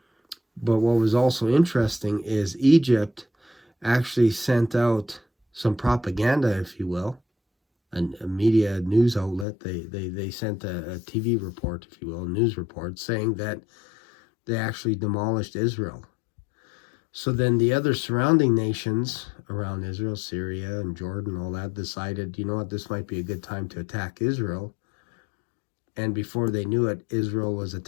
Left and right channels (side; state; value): right; drops out; at 9.5 s